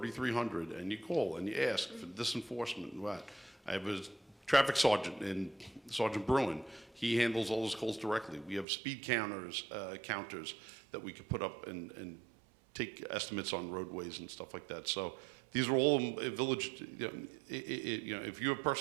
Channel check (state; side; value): drops out; left; at 8.7 s